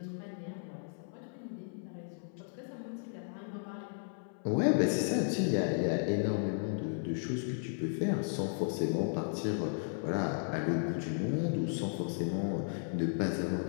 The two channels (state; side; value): silent; right; 55 dB below the other